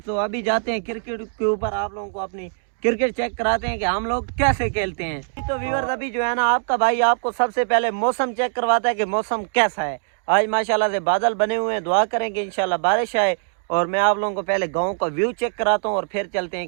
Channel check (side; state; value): left; silent; digital silence